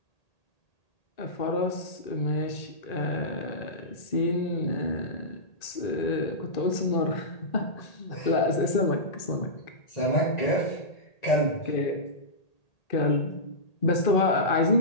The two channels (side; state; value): right; late; 1.8 ms